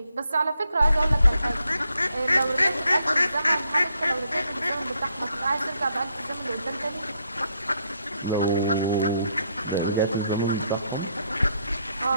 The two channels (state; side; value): inverted; both; correlation -0.75